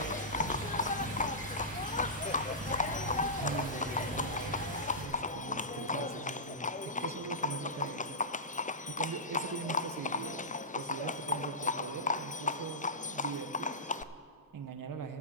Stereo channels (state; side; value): normal; both; correlation -0.16